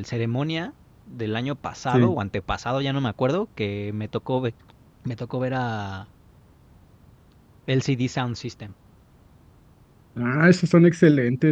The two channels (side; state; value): both; identical; correlation 1.00